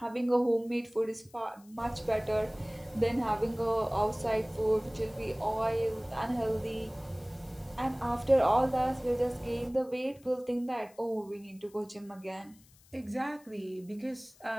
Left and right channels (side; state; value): left; noise; hiss, 27 dB below the sound